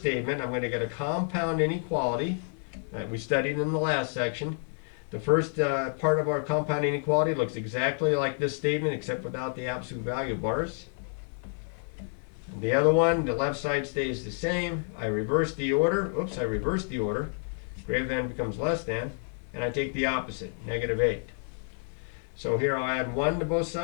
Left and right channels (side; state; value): right; silent; 56 dB below the other